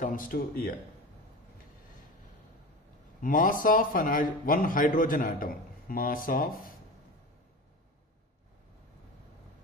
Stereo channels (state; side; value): normal; both; correlation 0.29